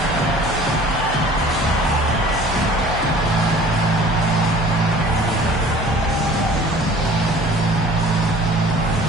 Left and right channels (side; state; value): both; normal; correlation 0.48